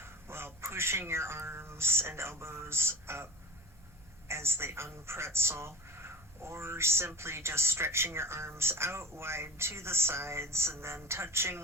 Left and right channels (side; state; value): both; normal; correlation 0.36